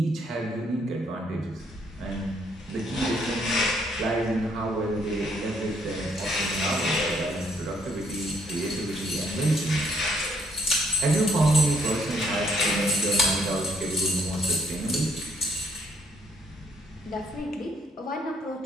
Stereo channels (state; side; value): normal; both; correlation 0.69